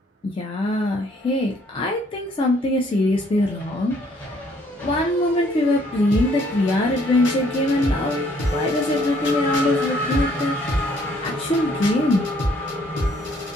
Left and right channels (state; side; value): normal; both; correlation 0.64